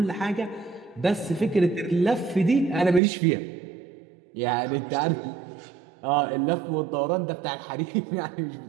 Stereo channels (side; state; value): left; drops out; at 3.0 s